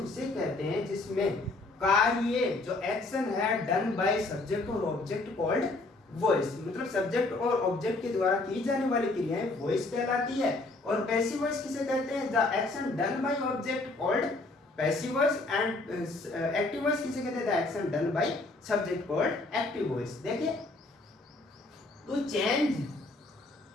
कहते हैं जिसमें कार्य, जो एक्शन है, डन बाय सब्जेक्ट और ऑब्जेक्ट कॉल्ड वॉइस। मतलब सब्जेक्ट और ऑब्जेक्ट के द्वारा की जाने वाली क्रियाएं वॉइस कहलाती है। और पैसिव वॉइस किसे कहते हैं, the action done by object called passive voice, and active voice किसे कहते हैं, the action done by subject called active voice. देखिए to change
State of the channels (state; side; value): quieter; right; 3.1 dB